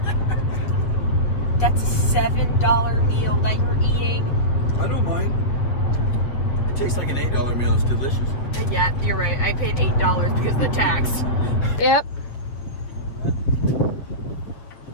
That's a $7 meal that you're eating. I don't mind. It tastes like an $8 meal. It's delicious. Yeah, you're right. I paid $8 because of the tax. Yep.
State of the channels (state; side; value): late; right; 8.0 ms